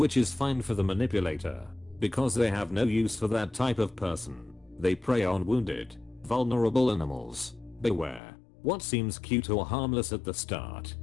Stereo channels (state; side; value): drops out; right; at 8.2 s